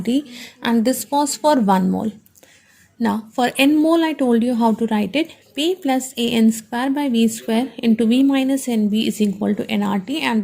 and this was for 1 mole. Now for n mole I told you how to write it. P plus AN square by V square into V minus NV is equal to nRT, and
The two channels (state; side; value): identical; both; correlation 1.00